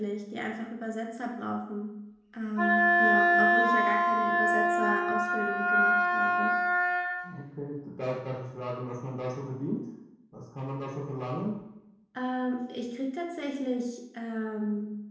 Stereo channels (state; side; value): identical; both; correlation 1.00